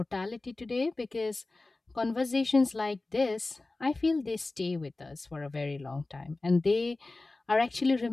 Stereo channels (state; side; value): quieter; right; 3.2 dB